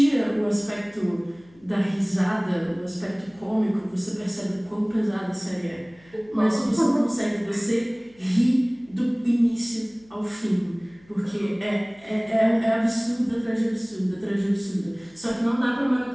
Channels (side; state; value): left; noise; hum, 28 dB below the sound